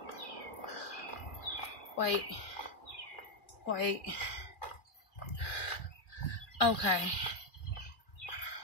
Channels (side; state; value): right; late; 2.4 ms